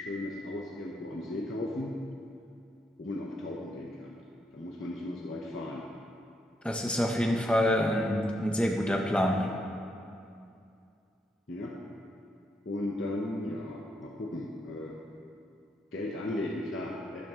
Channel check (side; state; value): both; normal; correlation 0.78